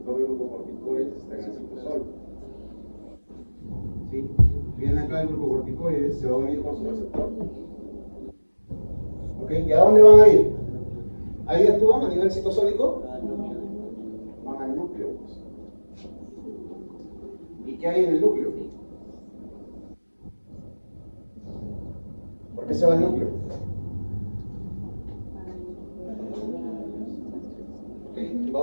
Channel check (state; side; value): inverted; both; correlation -1.00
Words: de glucocorticoides está en el citosol. ¿Sí? Viene acá el glucocorticoide, se va a unir con su receptor. ¿Ok? ¿Y a dónde van a ir? ¿Ahí actúan a nivel citosólico? Van al núcleo. ¿Y qué hay en el núcleo? ¿Por qué se va al núcleo? Ok,